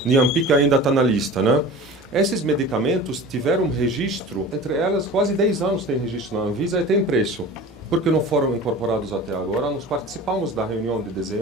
Niampic ainda está na lista, né? Esses medicamentos tiveram registro, entre elas quase 10 anos tem registro na Anvisa e tem preço. Porque não foram incorporados até agora, nós participamos da reunião de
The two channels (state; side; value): normal; both; correlation 0.38